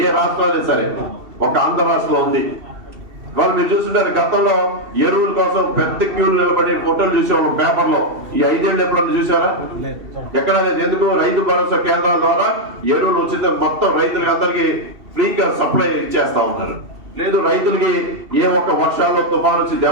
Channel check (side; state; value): left; late; 2.7 ms